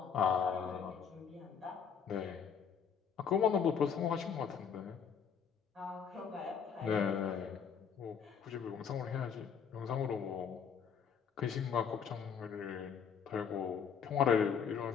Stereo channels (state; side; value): quieter; right; 7.0 dB